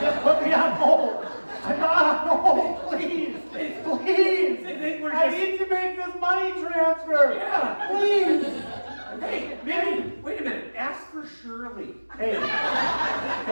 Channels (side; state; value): both; inverted; correlation -1.00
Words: just put me on hold. I'm not on hold. Please. Please. They think we're I just... need to make this money transfer. Yeah. Please. Hey, maybe, wait a minute, ask for Shirley. Hey.